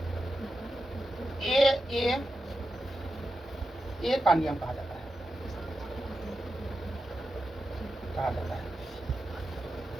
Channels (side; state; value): both; normal; correlation 0.89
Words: ए का नियम कहा जाता है।